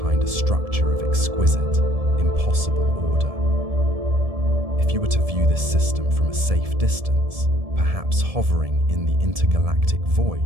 a structure of exquisite, impossible order. If you were to view this system from a safe distance, perhaps hovering in the intergalactic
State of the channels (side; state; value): left; late; 1.7 ms